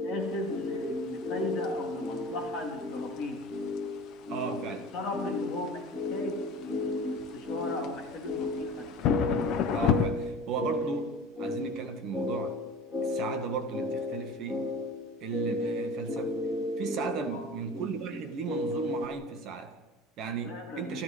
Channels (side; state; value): both; normal; correlation 0.37